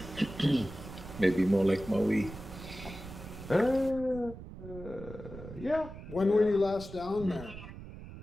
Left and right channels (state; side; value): noise; right; rumble, 13 dB below the sound